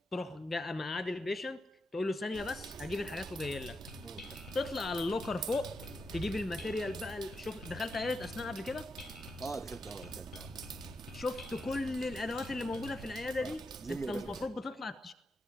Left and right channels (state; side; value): normal; both; correlation 0.85